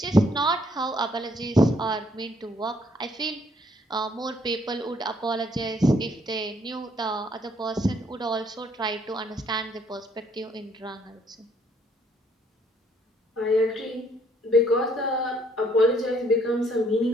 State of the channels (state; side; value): normal; both; correlation 0.66